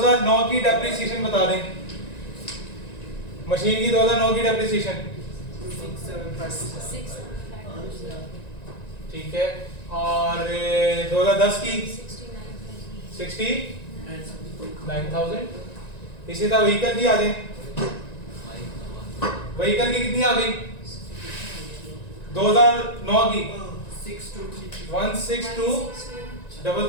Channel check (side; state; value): right; late; 1.9 ms